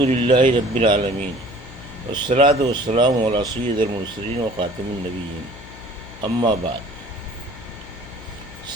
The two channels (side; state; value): left; noise; hum, 17 dB below the sound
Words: للہ رب العالمین والصلاة والسلام علی سید المرسلین و خاتم النبیین اما بعد۔